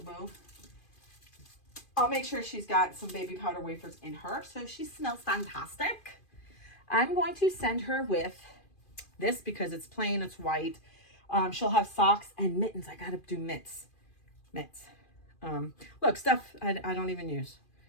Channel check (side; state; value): right; late; 2.4 ms